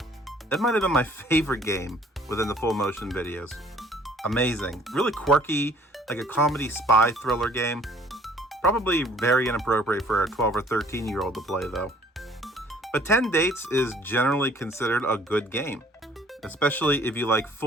That might have been my favorite game within the full motion videos. Amazing. Really quirky, like a comedy spy thriller game. Probably very inappropriate for a 12 or 13-year-old to play though. But 10 Dates is generally considered a good game, especially if you like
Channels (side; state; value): both; normal; correlation 0.56